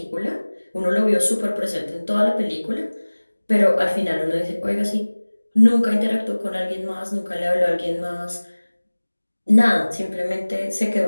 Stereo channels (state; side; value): inverted; both; correlation -1.00